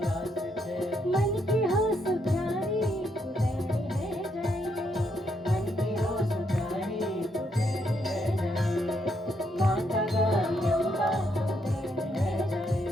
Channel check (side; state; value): both; normal; correlation 0.76